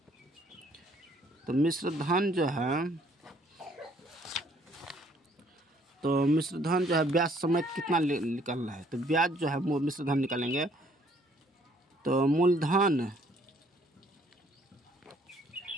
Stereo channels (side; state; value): both; normal; correlation 0.63